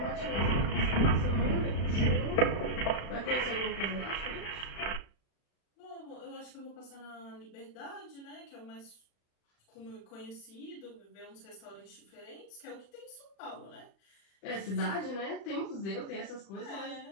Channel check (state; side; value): late; right; 35 ms